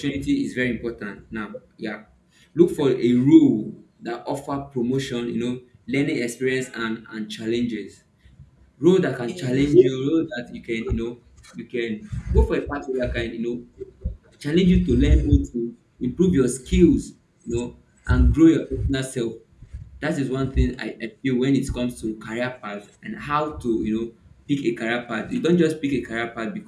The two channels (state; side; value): identical; both; correlation 1.00